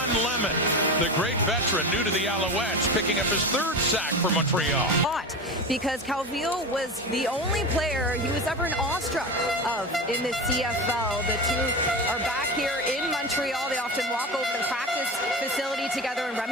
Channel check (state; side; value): normal; both; correlation 0.25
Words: Lemon, the great veteran, new to the Alouettes, picking up his 3rd sack for Montreal. Because Calvillo was the only player he was ever awestruck of in the CFL. The two are back here in Montreal. They often walk over to the practice facility together and